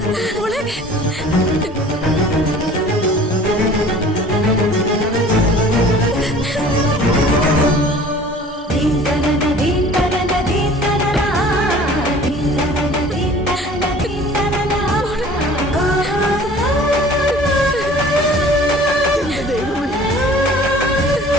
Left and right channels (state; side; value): normal; both; correlation 0.47